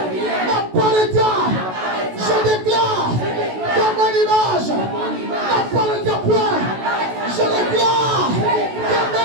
n'apparaîtra. Je déclare que mon image n'apparaîtra point. Je déclare que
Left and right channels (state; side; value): late; left; 16 ms